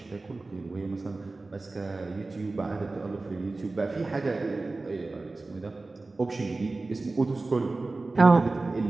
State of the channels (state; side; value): quieter; left; 3.4 dB